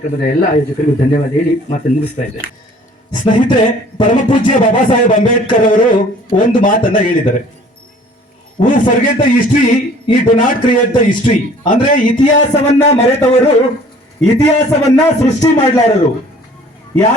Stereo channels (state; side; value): normal; both; correlation 0.52